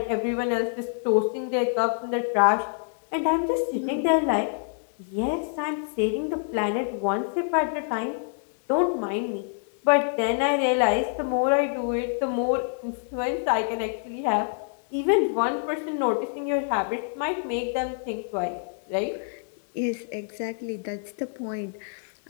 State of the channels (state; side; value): silent; right; digital silence